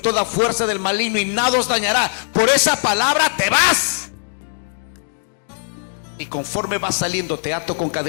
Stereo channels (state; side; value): silent; right; digital silence